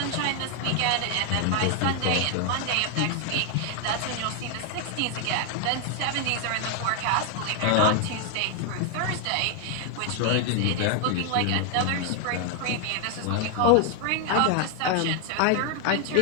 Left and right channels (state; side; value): different; both; correlation 0.00